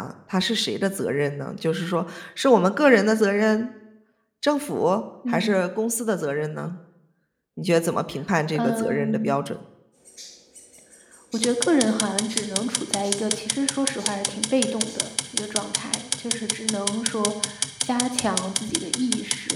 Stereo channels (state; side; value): identical; both; correlation 1.00